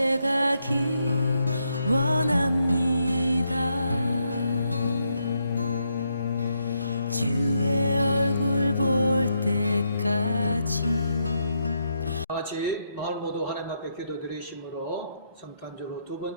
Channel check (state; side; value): inverted; both; correlation -0.79